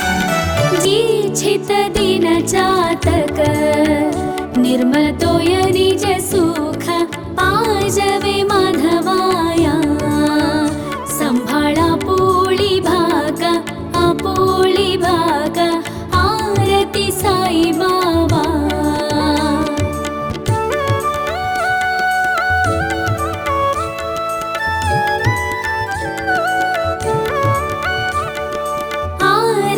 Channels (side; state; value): both; identical; correlation 1.00